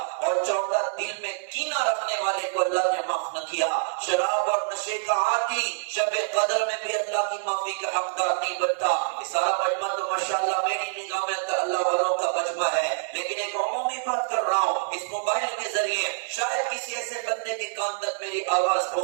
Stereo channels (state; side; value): silent; left; digital silence